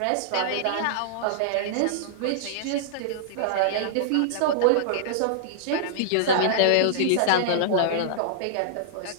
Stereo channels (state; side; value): different; both; correlation -0.02